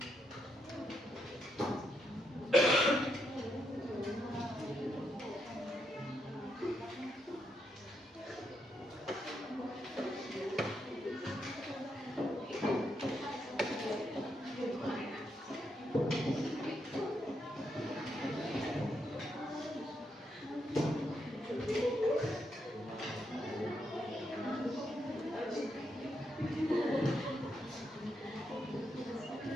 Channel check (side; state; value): both; normal; correlation 0.80